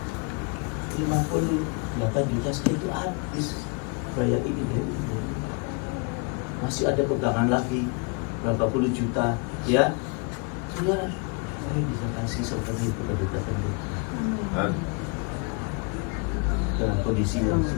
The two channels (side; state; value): right; quieter; 33.0 dB